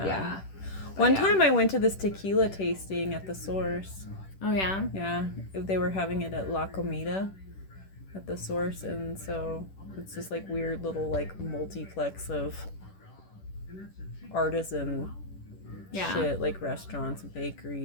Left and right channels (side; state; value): right; late; 10 ms